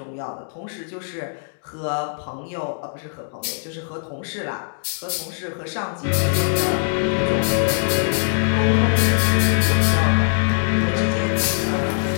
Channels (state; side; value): silent; right; digital silence